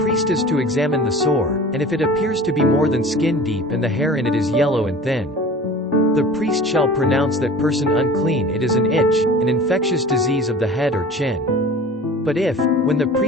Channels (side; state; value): both; normal; correlation 0.41